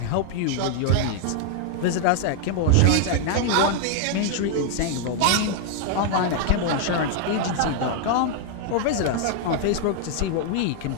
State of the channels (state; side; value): different; both; correlation 0.00